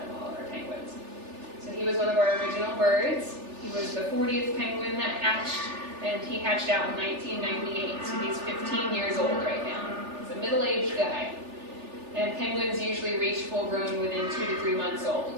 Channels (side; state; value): left; late; 3.4 ms